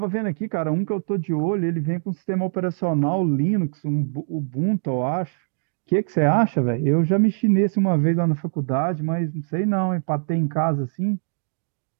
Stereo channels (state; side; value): silent; left; digital silence